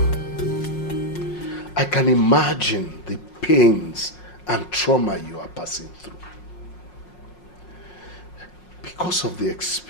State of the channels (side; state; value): right; late; 5.5 ms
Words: I can imagine the pains and trauma you are passing through. Because of the